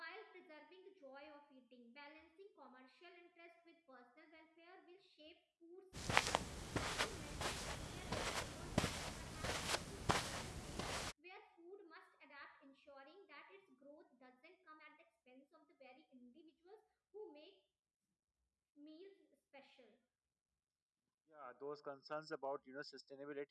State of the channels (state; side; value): identical; both; correlation 1.00